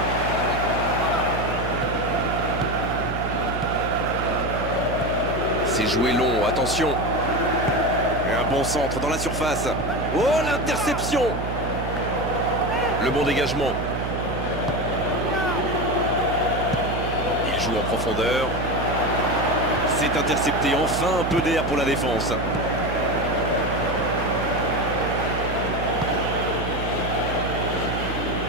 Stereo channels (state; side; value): noise; right; hum, 5 dB below the sound